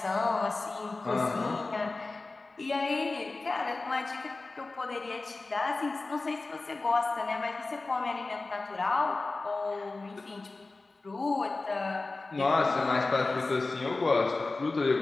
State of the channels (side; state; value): right; quieter; 3.4 dB